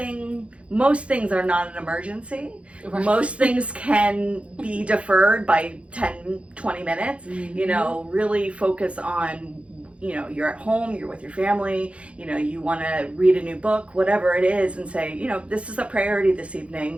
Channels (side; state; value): left; late; 0.061 ms